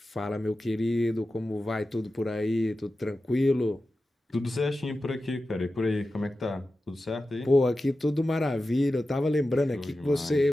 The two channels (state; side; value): normal; both; correlation 0.93